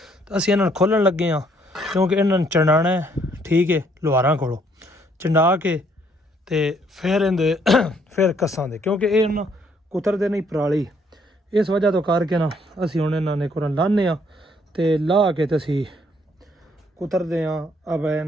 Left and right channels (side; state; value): both; normal; correlation 0.67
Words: ਅਸੀਂ ਇਹਨਾਂ ਨੂੰ ਖੋਲਣ ਲੱਗੇ ਹਾਂ ਕਿਉਂਕਿ ਇਹਨਾਂ ਨੂੰ ਚੰਡਾਣਾ ਹੈ ਠੀਕ ਹੈ ਲੁਹਾਰਾਂ ਕੋਲੋਂ ਚੰਡਾ ਕੇ ਤੇ ਫਿਰ ਇਹਦੇ ਫਿਰ ਕੱਸਾਂ ਦੇ ਕਿਉਂਕਿ ਇਹ ਨਾ ਕੁਤਰਦੇ ਨਹੀਂ ਪਰਾਲੀ ਇਸ ਵਜ੍ਹਾ ਤੋਂ ਕਰਕੇ ਨਾ ਅਸੀਂ ਹੁਣ ਇਹਨਾਂ ਨੇ ਕੁਰਨ ਲਾਣੇ ਆ ਤੇ ਲਾ ਕੇ ਤੇ ਅਸੀਂ ਕੁਤਰਦੇ ਆ ਅਬ